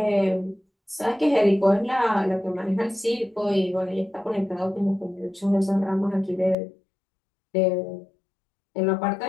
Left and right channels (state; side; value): drops out; right; at 6.6 s